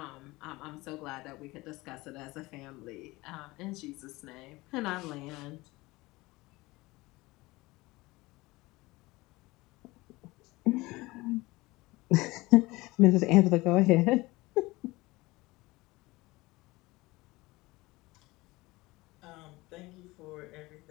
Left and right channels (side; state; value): right; quieter; 21.2 dB